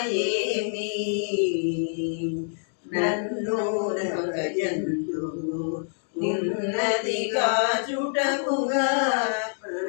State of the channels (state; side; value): silent; right; digital silence